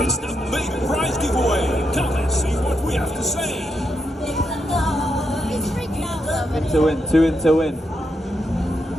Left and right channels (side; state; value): both; normal; correlation 0.82